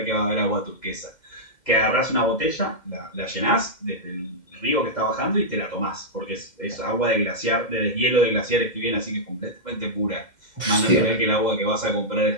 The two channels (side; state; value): right; late; 2.1 ms